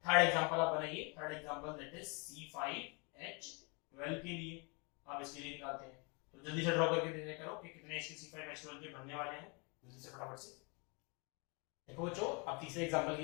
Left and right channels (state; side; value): quieter; right; 31.7 dB